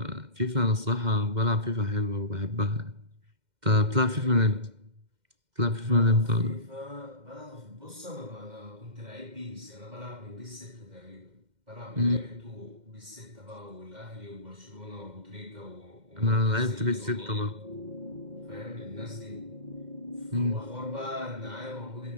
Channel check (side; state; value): left; late; 2.1 ms